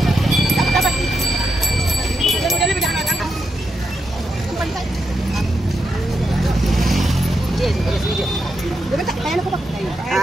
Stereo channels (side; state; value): both; normal; correlation 0.84